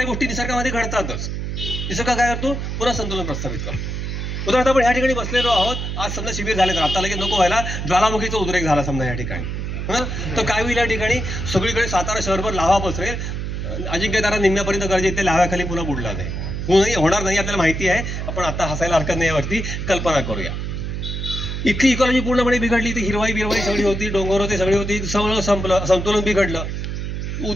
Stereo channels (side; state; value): right; noise; hum, 4 dB below the sound